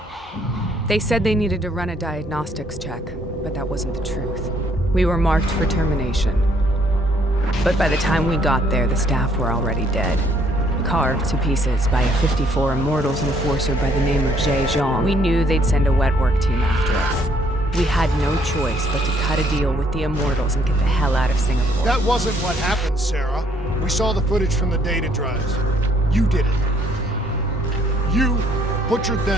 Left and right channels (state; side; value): normal; both; correlation 0.66